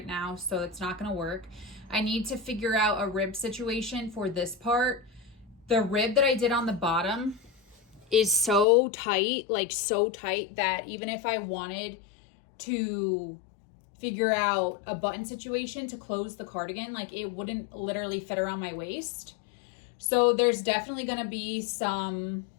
now, so it's not going to work. I need to figure out a rib situation for this part. The rib that I did on the bottom is so tight, like so tight that even if I wanted to figure out a button situation to close the cardigan, like it wouldn't literally fit around my waist. So there's definitely going to be some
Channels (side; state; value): right; drops out; at 8.7 s